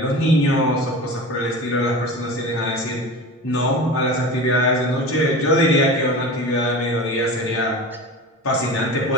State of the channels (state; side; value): normal; both; correlation 0.32